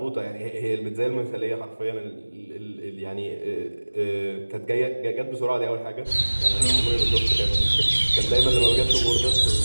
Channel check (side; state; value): both; inverted; correlation -1.00